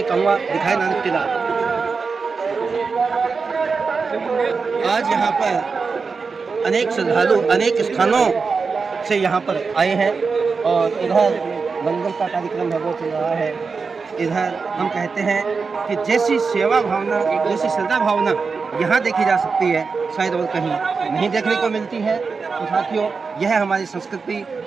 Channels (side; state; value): left; quieter; 4.9 dB